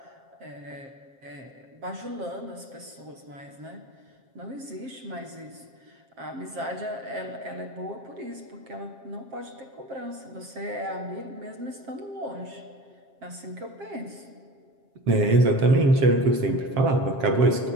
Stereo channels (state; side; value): late; left; 7.4 ms